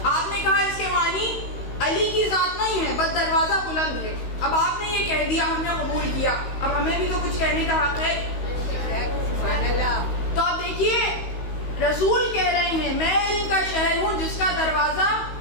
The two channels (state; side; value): late; right; 16 ms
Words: آپ نے کہا اس کے معنی علی کی ذات نہیں ہے، بس دروازہ بلند ہے۔ اب آپ نے یہ کہہ دیا، ہم نے قبول کیا، اب ہمیں بھی تو کچھ کہنے کا حق ہے۔ تو اب دیکھیے رسول کہہ رہے ہیں میں علم کا شہر ہوں جس کا دروازہ